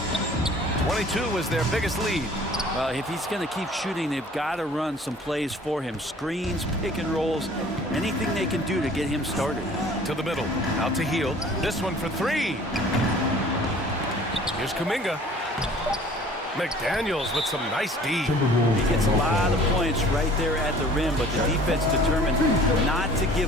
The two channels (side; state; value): both; normal; correlation 0.50